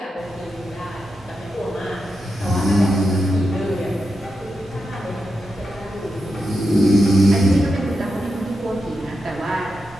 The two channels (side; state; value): both; normal; correlation 0.87